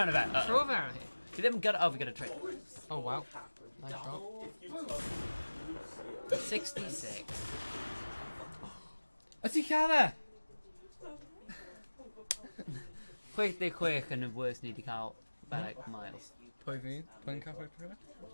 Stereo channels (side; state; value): both; inverted; correlation -1.00